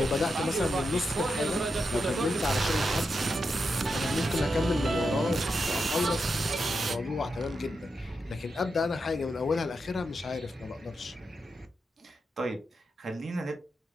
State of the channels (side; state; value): both; normal; correlation 0.86